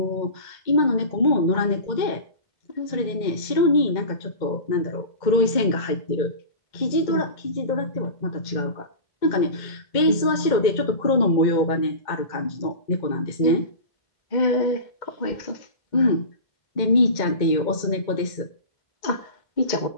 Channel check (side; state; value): right; late; 2.1 ms